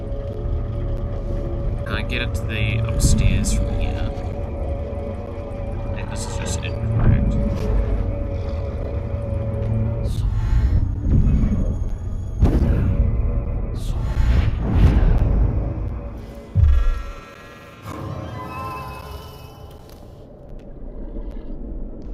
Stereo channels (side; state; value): both; identical; correlation 1.00